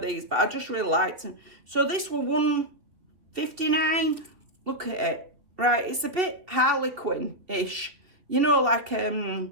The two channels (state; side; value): late; left; 3.0 ms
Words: these, but I just really liked them. So this was $1.59. Look at it. Right, it's a bit Harlequin-ish. You know, like,